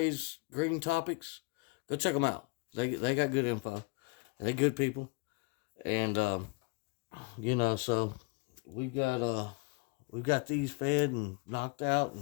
Green Topics. Go check them out. They got good info. They good people, and so we got these fed and knocked out,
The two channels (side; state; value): right; quieter; 28.8 dB